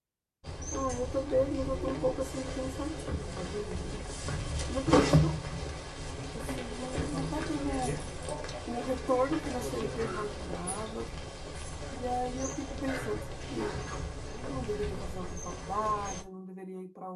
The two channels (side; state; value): both; identical; correlation 1.00